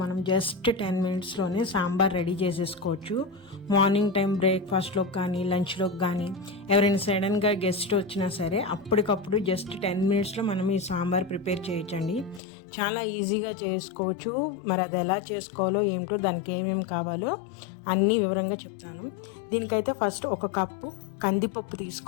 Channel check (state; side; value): drops out; right; at 12.4 s